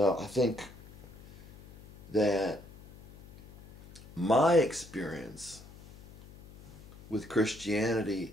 I think that my experience with Christianity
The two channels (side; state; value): left; noise; hum, 20 dB below the sound